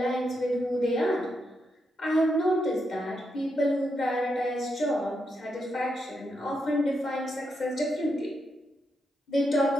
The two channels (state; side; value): normal; both; correlation 0.82